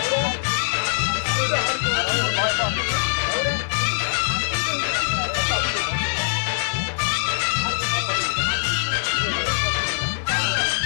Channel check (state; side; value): silent; right; 64 dB below the other